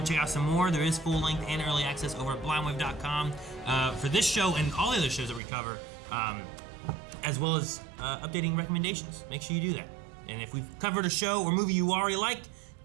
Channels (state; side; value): drops out; left; at 5.4 s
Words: to check out some more, there is full length and early access over at blindwave.com for this show and all the other shows that we cover, as well as updating recommendations. Make sure you do that. And if we've covered a show or movie you already liked,